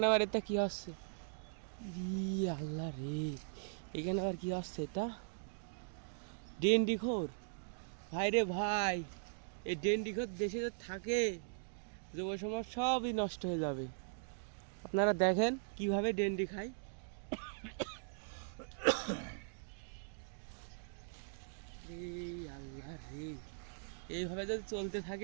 আবার এটা কি হচ্ছে? আল্লাহ রে, এখানে আবার কি হচ্ছে? এটা ডেন্ডিখোর। ভাই রে ভাই, এই ডেন্ডিখোর দেশে যে থাকে, যুব সমাজ সবই নষ্ট হয়ে যাবে। আপনারা দেখেন কিভাবে ডেন্ডি খায়। আল্লাহ রে, এইভাবে যদি চলতে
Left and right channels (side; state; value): left; silent; digital silence